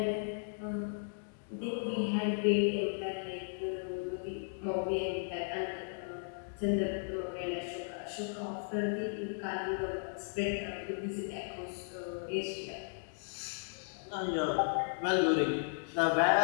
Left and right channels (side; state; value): right; silent; digital silence